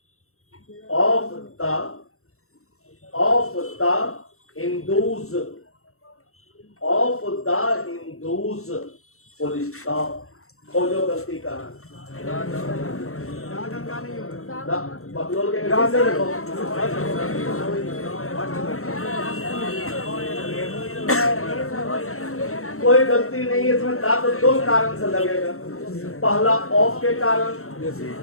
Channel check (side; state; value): right; late; 0.63 ms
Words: the Hindus, full stop। खोजो गलती कहाँ? बकलोल के गलती से देखो। कोई गलती नहीं है इसमें, तो दो कारण से लगेगा। पहला ऑफ के कारण